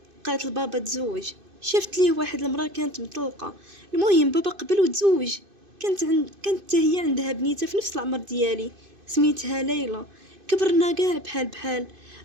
قالت لبابا تزوج. شفت ليه واحد المرأة كانت مطلقة. المهم بابا قبل وتزوج. كانت هي عندها بنيته في نفس العمر ديالي، سميتها ليلى. كبرنا قاع بحال بحال.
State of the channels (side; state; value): left; late; 2.5 ms